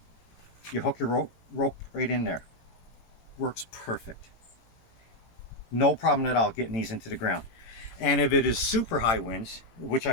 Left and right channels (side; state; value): right; late; 18 ms